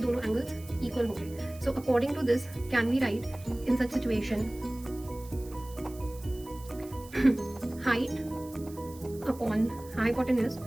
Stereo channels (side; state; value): right; noise; hiss, 21 dB below the sound